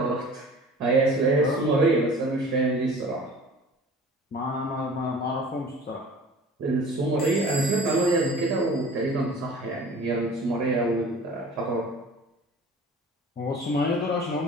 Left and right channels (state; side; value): normal; both; correlation 0.44